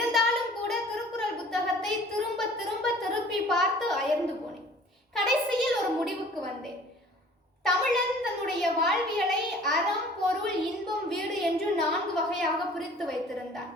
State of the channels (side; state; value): both; normal; correlation 0.50